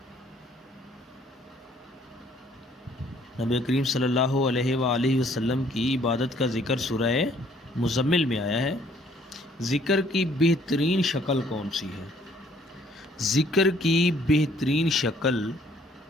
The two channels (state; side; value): normal; both; correlation 0.62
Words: نبی کریم صلی اللہ علیہ وآلہ وسلم کی عبادت کا ذکر سورہ مزمل میں آیا ہے۔ ذکر کی بہترین شکل کون سی ہے؟ ذکر کی بہترین شکل